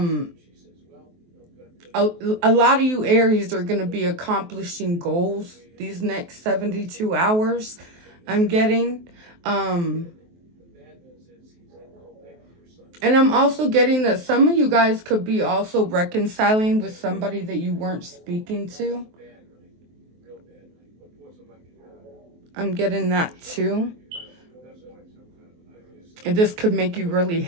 lot of you Aries are going to be accomplishing goals these next 72 hours, I'm getting. And I'm also getting that some of you guys could be also reconciling with somebody that you weren't speaking to. I'm getting that too. And this could make you really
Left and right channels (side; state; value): left; late; 23 ms